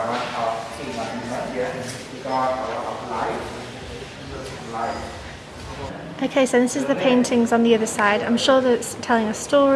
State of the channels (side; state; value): both; identical; correlation 1.00